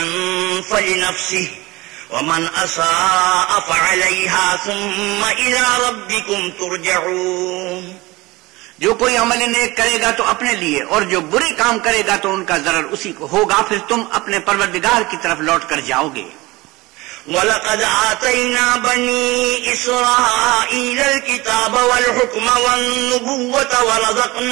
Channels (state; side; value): quieter; left; 21.4 dB